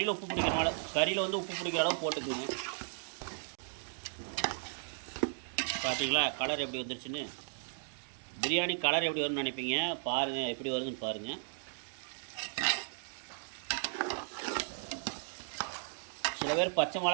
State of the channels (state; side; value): silent; left; digital silence